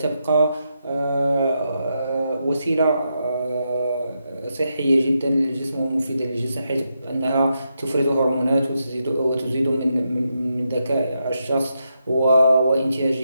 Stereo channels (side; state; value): both; inverted; correlation -0.83